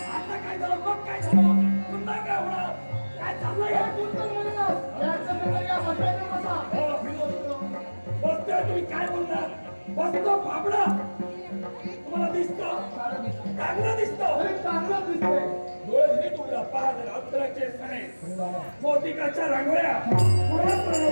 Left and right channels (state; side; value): inverted; both; correlation -1.00